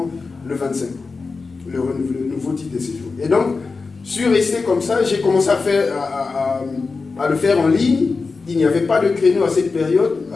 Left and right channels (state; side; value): quieter; right; 4.3 dB